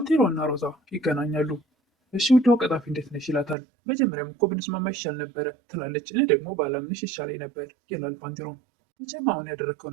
እና ሮዛ ይገናኛሉ። እሺ ውዷ ቀጣፊ እንዴት ነሽ ይላታል። መጀመሪያም እኮ ብንስማማ ይሻል ነበረ ትላለች። እኔ ደግሞ ባላምንሽ ይሻለኝ ነበር ይላል ባንቴሮም። መቼም አሁን ያደረግከው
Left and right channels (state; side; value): drops out; left; at 3.6 s